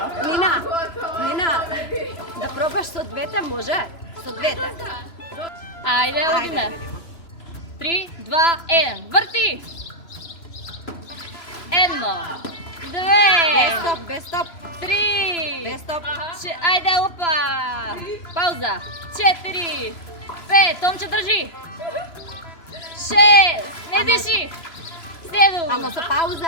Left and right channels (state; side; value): late; right; 3.0 ms